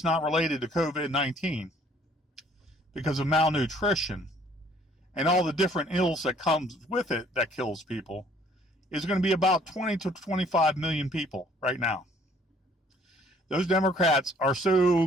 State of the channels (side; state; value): both; normal; correlation 0.59